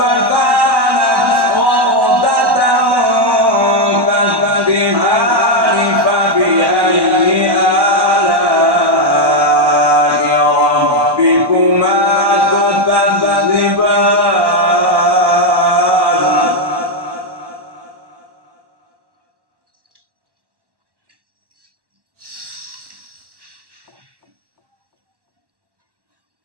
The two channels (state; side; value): late; left; 1.1 ms